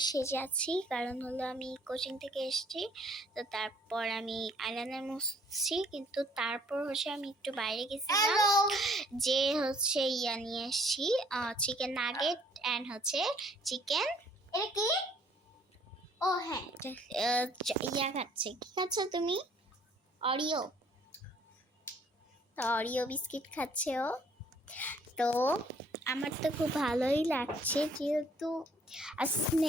সেজে আছি, কারণ হলো আমি কোচিং থেকে এসেছি। তো তারপর আমি আইলাইনার মুছছি, কিন্তু তারপর আমি একটু বাইরে গেছিলাম, যে ইয়া নিয়ে এসেছি, চিকেন নাগেট অ্যান্ড চিকেন এটা কি, ও হ্যাঁ ইয়া খাচ্ছে। কি খাচ্ছ তুমি? অরিও। তো অরিও বিস্কিট খাচ্ছে ও। তো আমার তো খুব ভালোই লাগছে, যেহেতু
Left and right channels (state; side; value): normal; both; correlation 0.61